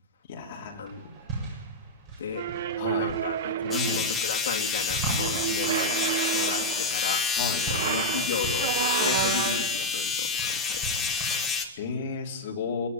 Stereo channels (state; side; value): normal; both; correlation 0.01